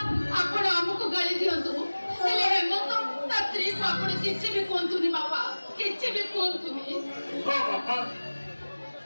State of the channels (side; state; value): both; inverted; correlation -1.00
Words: ଆପଣ ଆମକୁ ଗାଳି ଦିଅନ୍ତୁ, ହେଲେ ହେମନ୍ତ ତା ସ୍ତ୍ରୀକୁ ଆପଣ କିଛି ବି କୁହନ୍ତୁନି ବାପା, କିଛି ବି କୁହନ୍ତୁନି। ବାପା